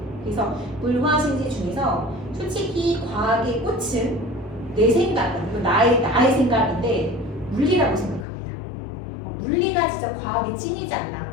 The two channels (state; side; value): drops out; right; at 8.2 s